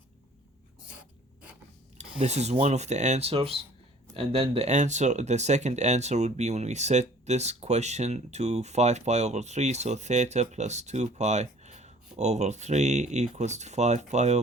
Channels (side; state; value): both; normal; correlation 0.52